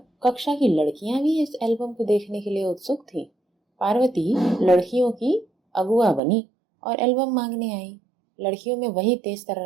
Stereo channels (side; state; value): left; drops out; at 6.2 s